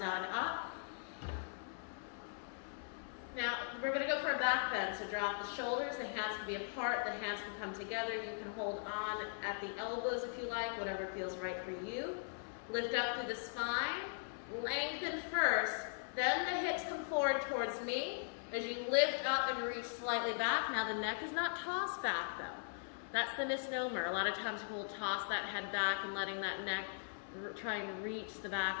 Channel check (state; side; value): silent; right; digital silence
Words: out and up. Now, we're going to go for a back bend. So drop the shoulders. The hands can be apart. The hands can come together. You can hold on at the elbows if you like, whatever feels right for you. Lift up through the spine. Lengthen first. Then the hips come forward towards me. As you lift up and reach slightly back. Now the neck is not tossed back though. That's the misnomer. A lot of times people will toss that head back and letting that neck try and reach the back